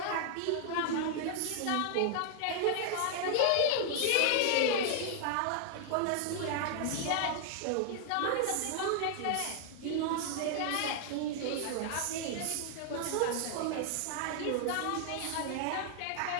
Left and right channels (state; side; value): different; both; correlation 0.00